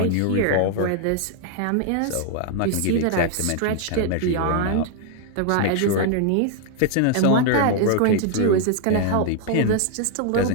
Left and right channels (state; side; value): different; both; correlation 0.00